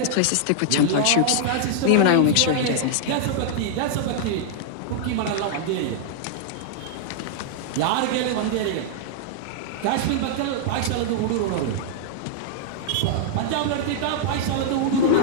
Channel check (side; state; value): both; different; correlation -0.01